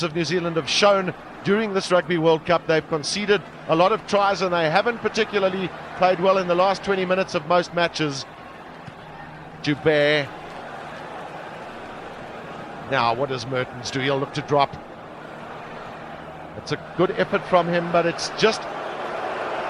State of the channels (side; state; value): both; identical; correlation 1.00